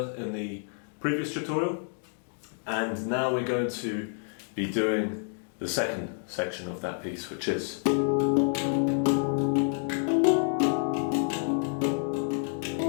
the previous tutorial, and now we're going to be doing the second section of that piece, which is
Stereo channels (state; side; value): silent; right; 59 dB below the other